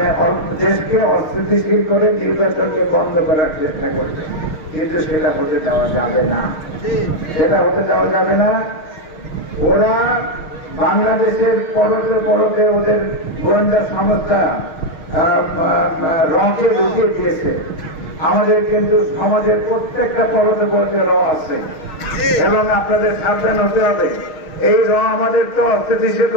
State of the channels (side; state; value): right; late; 6.4 ms